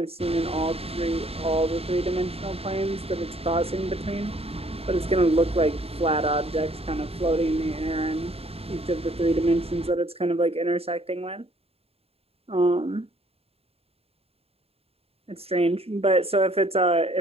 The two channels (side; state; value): left; late; 0.29 ms